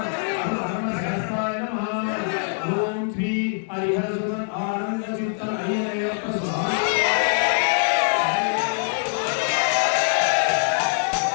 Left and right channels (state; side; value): silent; right; digital silence